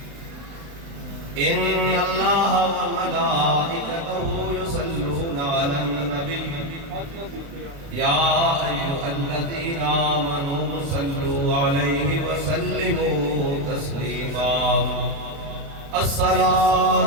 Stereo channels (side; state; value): left; late; 35 ms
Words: إن الله وملائكته يصلون على النبي يا أيها الذين آمنوا صلوا عليه وسلموا تسليما